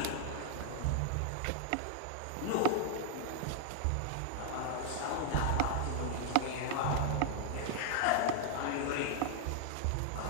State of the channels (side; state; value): both; different; correlation 0.00